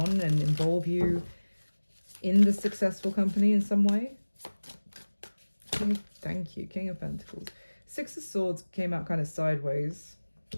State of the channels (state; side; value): inverted; both; correlation -1.00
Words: and involve you in the successful company in some way. Thank you, King of Pentacles. Six of Swords came out kind of sideways.